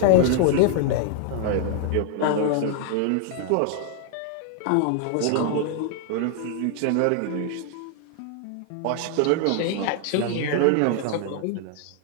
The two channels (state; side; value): different; both; correlation 0.00